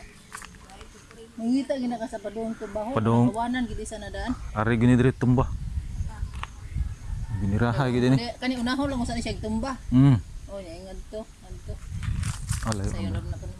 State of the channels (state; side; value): identical; both; correlation 1.00